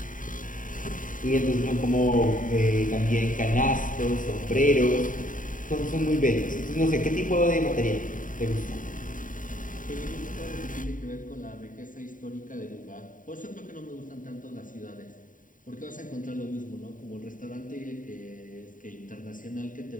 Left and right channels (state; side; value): late; right; 0.39 ms